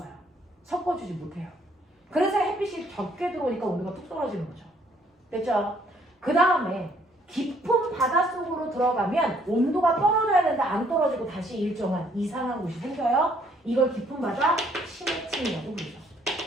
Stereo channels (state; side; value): normal; both; correlation 0.65